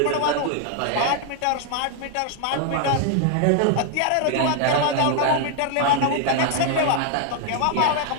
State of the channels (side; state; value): both; different; correlation 0.00